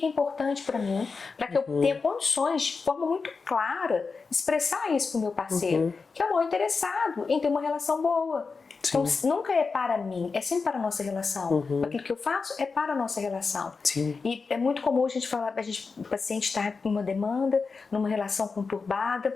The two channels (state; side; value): quieter; right; 4.7 dB